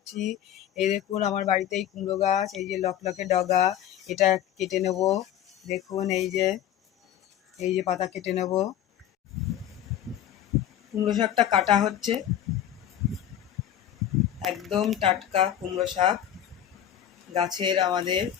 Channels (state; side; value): quieter; right; 10.9 dB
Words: এই দেখুন আমার বাড়িতেই কুমড়ো গাছ, এই যে লকলকে ডগা, এটা কেটে নেব। দেখুন এই যে পাতা কেটে নেব। কুমড়ো শাকটা কাটা হচ্ছে, একদম টাটকা কুমড়ো শাক গাছের আমাদের।